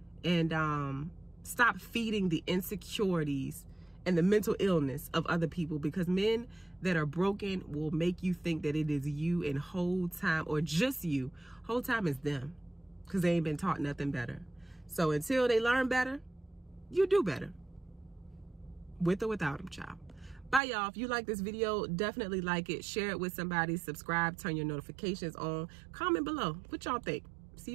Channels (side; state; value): left; drops out; at 20.6 s